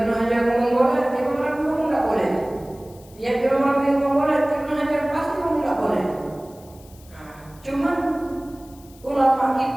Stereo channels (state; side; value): noise; left; hiss, 25 dB below the sound